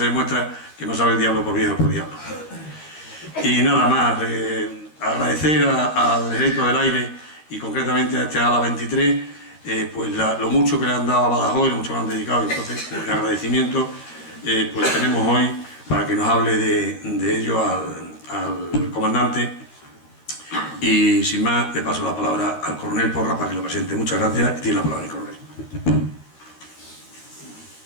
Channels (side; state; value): right; late; 13 ms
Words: demuestra que no sabe el diablo por viejo por diablo. Y nada más, agradecer al Ejército del Aire y concretamente a este ALA 23, pues lo mucho que le han dado a Badajoz y lo mucho que le han dedicado. Entonces, pues, el agradecimiento pues tenemos hoy para que nos hable de ello al comandante. Y sin más, le paso la palabra al coronel Porra para que lo presente. Muchas gracias y tiene la palabra el coronel.